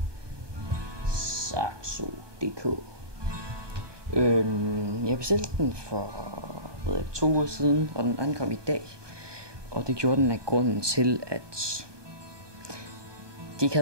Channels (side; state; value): left; late; 1.2 ms